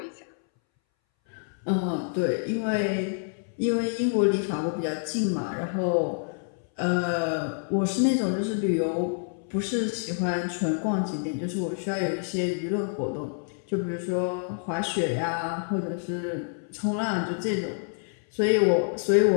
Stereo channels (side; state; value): right; silent; 60 dB below the other